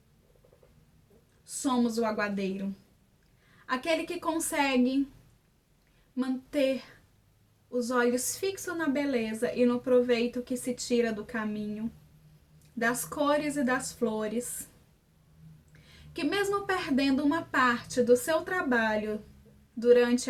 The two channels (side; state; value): both; identical; correlation 1.00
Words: somos o aguadeiro? Aquele que consegue manter os olhos fixos na beleza e no proveito que se tira do caminho, das cores e das flores, que mesmo perdendo uma parte do seu trabalho durante